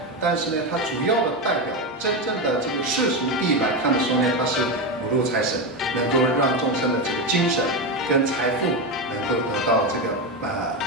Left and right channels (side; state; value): both; normal; correlation 0.13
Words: 但是呢，它主要的代表真正的这个世俗地来看的时候呢，它是五路财神，能够让众生的这个精神跟财富能够得到这个